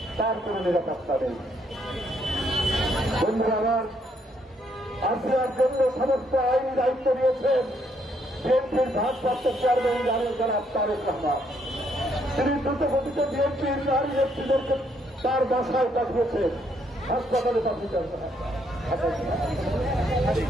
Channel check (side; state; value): both; normal; correlation 0.72